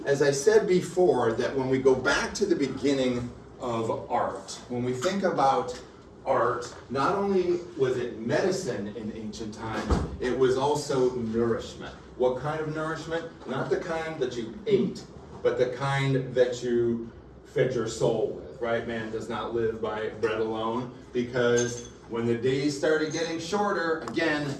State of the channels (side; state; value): both; identical; correlation 1.00